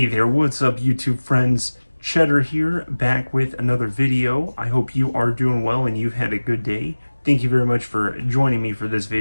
there, what's up YouTube friends? Cheddar here, back with another video. I hope you are doing well and you've had a good day. Thank you very much for joining me for this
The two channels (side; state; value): both; inverted; correlation -1.00